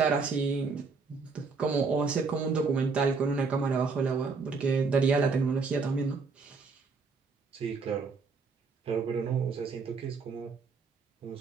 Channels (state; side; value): quieter; left; 4.6 dB